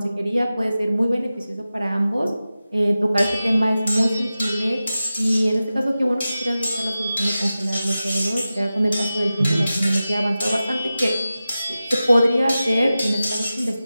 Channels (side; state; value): both; inverted; correlation -0.94